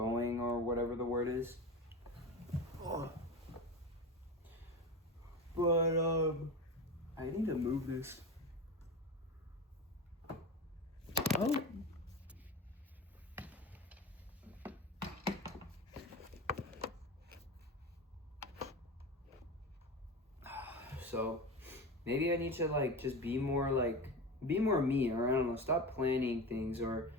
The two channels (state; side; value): normal; both; correlation 0.27